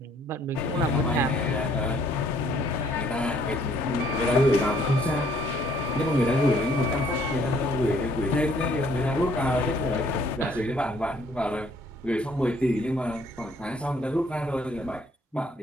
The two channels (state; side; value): normal; both; correlation 0.63